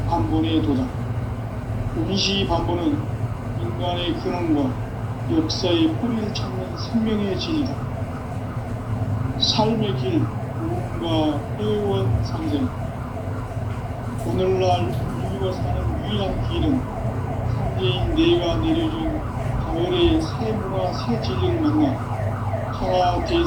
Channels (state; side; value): identical; both; correlation 1.00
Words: 도다. 운시반본은 인간의 근원과 역사의 뿌리를 찾는 생명의 진이다. 삶의 길, 구원과 회원 상생. 오늘날 인류가 사는 유일한 길은 상제인 내가 내려준 가을의 새 문화, 새 진리를 만나 천하